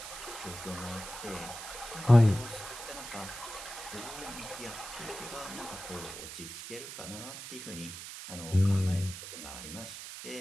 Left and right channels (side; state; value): right; noise; hiss, 10 dB below the sound